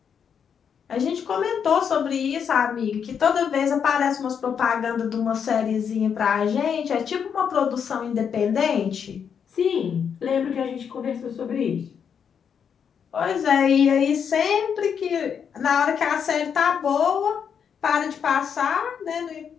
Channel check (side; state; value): right; quieter; 7.4 dB